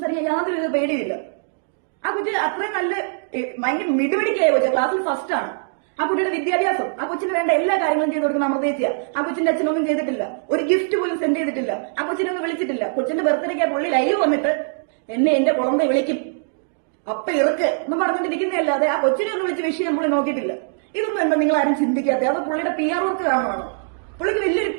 യാതൊരു പേടിയില്ല. ആ കുട്ടി അത്രയും നല്ല ഭയങ്കര മിടുപിടിക്കായ കൊച്ച, ക്ലാസ്സിൽ ഫസ്റ്റ് ആണ്. ആ കുട്ടിയുടെ വിദ്യാഭ്യാസം, ആ കൊച്ചിന് വേണ്ട എല്ലാ കാര്യങ്ങളും ചെയ്ത് കൊടുക്കുന്ന അമൃതേച്ചിയ. ആ കൊച്ചിന്റെ അച്ഛനൊന്നും ചെയ്തിട്ടില്ല, ഒരു ഗിഫ്റ്റ് പോലും സെൻഡ് ചെയ്തിട്ടില്ല, ആ കൊച്ചിനെ ഒന്നും വിളിച്ചിട്ടില്ല. കൊച്ചിന്റെ ബർത്ത്ഡേക്ക് പുള്ളി ലൈവ് വന്നിട്ട് എന്നെ എന്റെ കുളമ്പ വിളിക്കും അപ്പ ഇറക്ക് എന്ന് പറഞ്ഞിട്ടിരിക്കുന്നതല്ലാതെ ആ കൊച്ചിനെ ഒന്ന് വിളിച്ച് വിഷയം പുള്ളി നോക്കിയിട്ടില്ല. ഇതൊന്നും എന്താ നിങ്ങൾ ആരും ചിന്തിക്കാത്ത? അത് പുള്ളിയുടെ PR വർക്ക് കാണുവാണ്. പുള്ളിക്ക് വലിയൊരു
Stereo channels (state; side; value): silent; left; digital silence